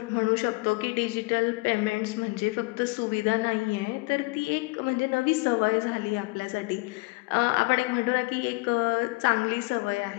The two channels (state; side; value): quieter; right; 26.5 dB